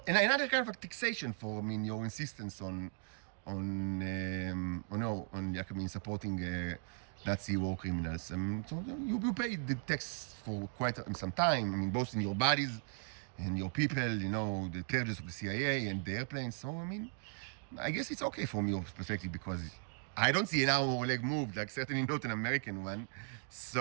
another kind of taxation for, your insistence on like, I mean, supporting Nazi war criminals. I mean, so you pay the tax for quite some time. I mean, both in your bodies and your people, you know, the purges of the CIA and the airplanes. So, I mean, I guess it's okay from your perspective because I don't see an arm or leg moved, like certainly not an American one.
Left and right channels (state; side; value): silent; left; 53 dB below the other